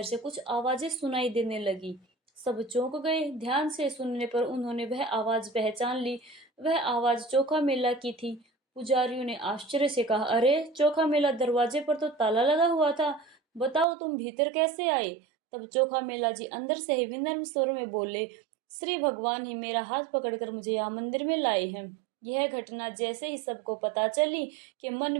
से कुछ आवाजें सुनाई देने लगी। सब चौंक गए। ध्यान से सुनने पर उन्होंने वह आवाज पहचान ली। वह आवाज चोखा मेला की थी। पुजारियों ने आश्चर्य से कहा, अरे चोखा मेला, दरवाजे पर तो ताला लगा हुआ था। बताओ तुम भीतर कैसे आए? तब चोखा मेला जी अंदर से ही विनम्र स्वर में बोले, श्री भगवान ही मेरा हाथ पकड़कर मुझे यहाँ मंदिर में लाए हैं। यह घटना जैसे ही सबको पता चली कि मन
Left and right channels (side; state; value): left; drops out; at 13.9 s